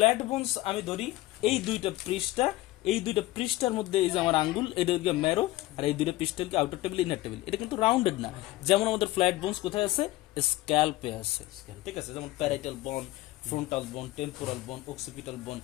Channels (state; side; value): quieter; right; 17.5 dB